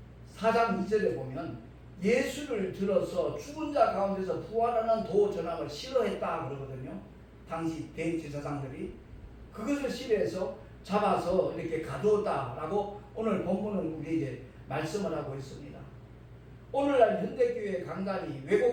4장 2절에 보면 예수를 들어서 죽은 자 가운데서 부활하는 도 전함을 싫어했다 그러거든요. 당시 대제사장들이 그것을 싫어해서 잡아서 이렇게 가두었다라고 오늘 본문은 우리에게 말씀을 하고 있습니다. 오늘날 현대교회 강단이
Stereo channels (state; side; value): identical; both; correlation 1.00